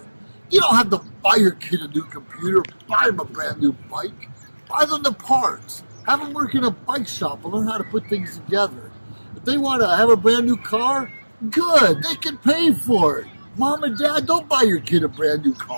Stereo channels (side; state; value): both; inverted; correlation -1.00